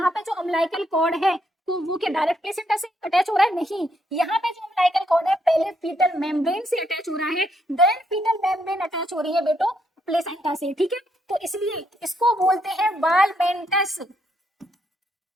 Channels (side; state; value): both; normal; correlation 0.75